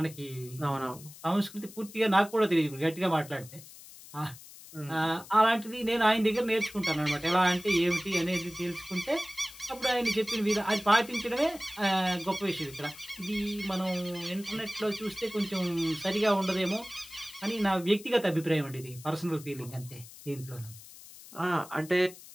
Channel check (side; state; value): left; noise; hiss, 18 dB below the sound